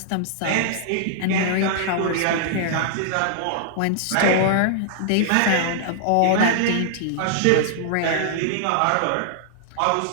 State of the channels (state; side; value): different; both; correlation -0.01